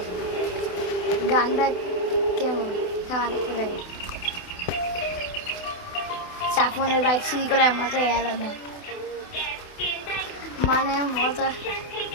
গানটা কেমন খাওয়ানো যাই, সাফনের বাইক সিঁড়ি করে মজাই আলাদা, মানে মজা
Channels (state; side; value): late; right; 28 ms